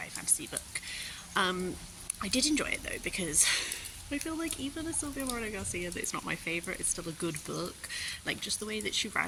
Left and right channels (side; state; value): both; identical; correlation 1.00